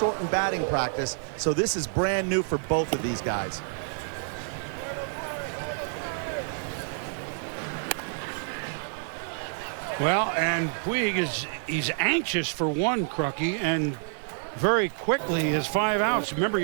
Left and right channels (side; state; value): left; silent; 58 dB below the other